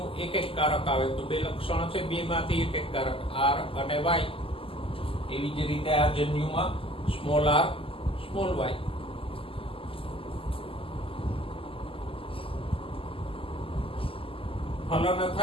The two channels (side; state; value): right; late; 0.26 ms